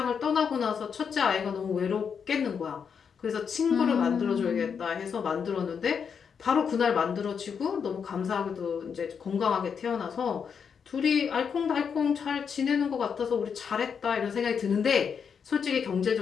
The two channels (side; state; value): right; quieter; 6.7 dB